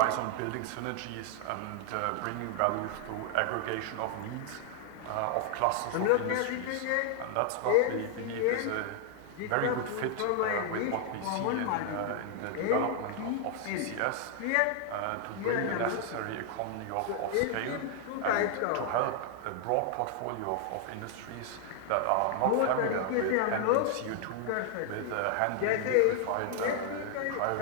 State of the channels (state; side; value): different; both; correlation 0.00